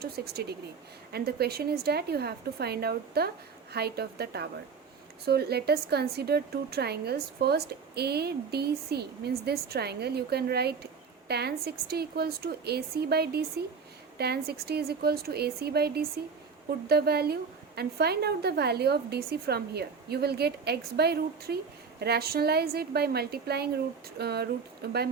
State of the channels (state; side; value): quieter; left; 5.6 dB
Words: 60 degree. And the question is that you have to find out the height of the tower. So let us consider two triangles. First, ADC means this triangle. You can write tan 60 equals to AC by DC. Tan 60 is equals to AC by DC. Put the value and find out the value of DC from here. You will get x by root 3. Rationalize it by multiplying